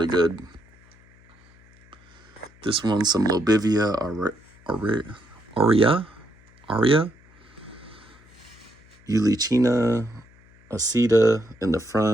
good. This one's some Lobivia aurea, Eulichina acida in the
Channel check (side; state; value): left; noise; hum, 28 dB below the sound